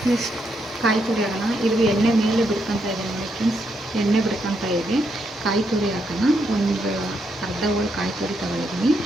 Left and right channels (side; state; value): both; normal; correlation 0.79